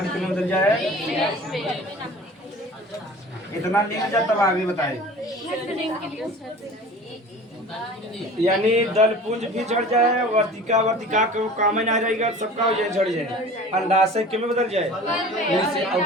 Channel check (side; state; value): both; normal; correlation 0.41